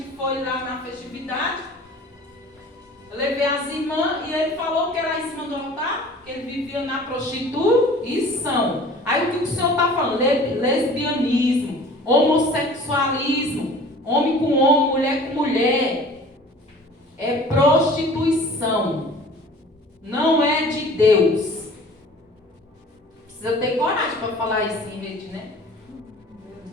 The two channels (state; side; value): normal; both; correlation 0.46